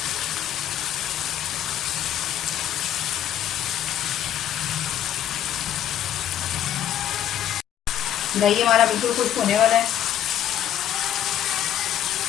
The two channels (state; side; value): quieter; right; 10.9 dB